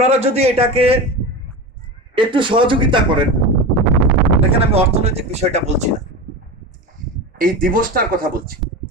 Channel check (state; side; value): normal; both; correlation 0.25